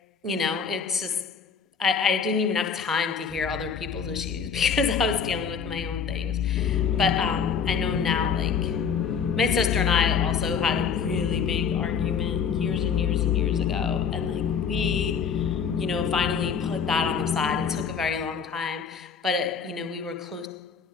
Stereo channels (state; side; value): quieter; right; 6.5 dB